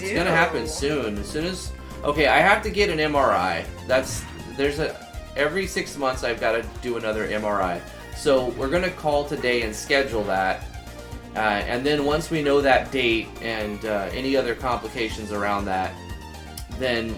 do. gonna happen soon. As soon as... Okay, I have to get an MRI. Every 6 months I've got to do another MRI. So we're gonna call today and schedule that. And then once we know that date and any other complications around that, then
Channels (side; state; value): both; identical; correlation 1.00